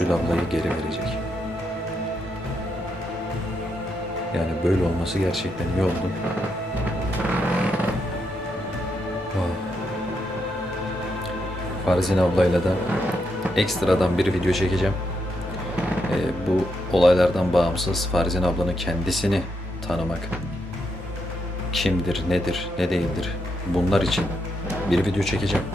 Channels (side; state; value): both; normal; correlation 0.81